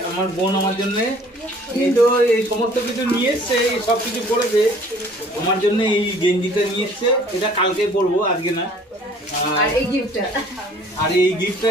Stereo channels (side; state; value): both; normal; correlation 0.54